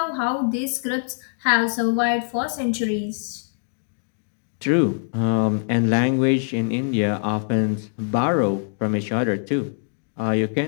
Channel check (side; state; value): right; silent; digital silence